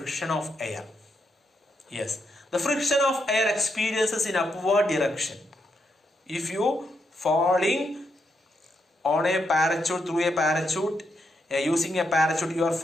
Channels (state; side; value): normal; both; correlation 0.80